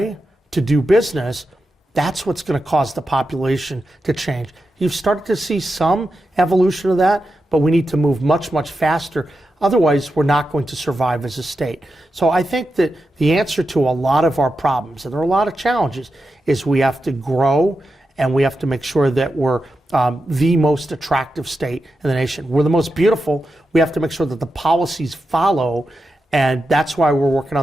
to do business, that's what's going to cause the population to change. You've started to see some evolution of that, but we need to move much faster. Otherwise, we're not going to survive as a state. So I think that the answer to a lot of our problems, and there are a lot of challenges, is we have to grow and we have to make sure that we're the most attractive state in the nation. We're the most beautiful. We have to make sure that the policies follow, and that's why we're working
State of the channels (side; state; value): both; normal; correlation 0.89